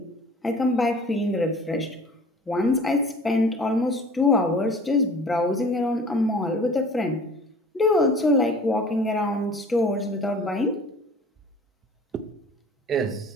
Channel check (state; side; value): normal; both; correlation 0.46